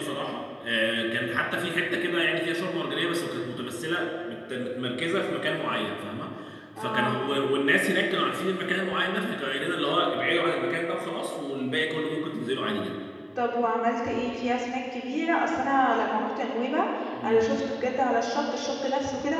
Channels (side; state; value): both; identical; correlation 1.00